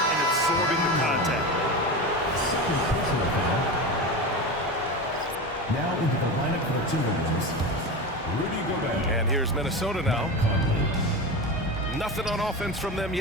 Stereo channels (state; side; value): normal; both; correlation 0.24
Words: absorbing the contact. Second personal foul. Now into the lineup for the Timberwolves, Rudy Gobert. And here's Minnesota now. Conley. Nothing on offense from them